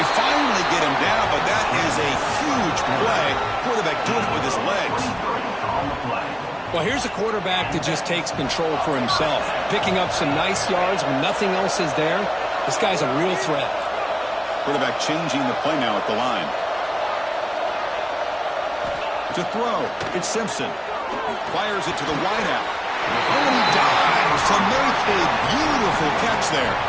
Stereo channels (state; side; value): identical; both; correlation 1.00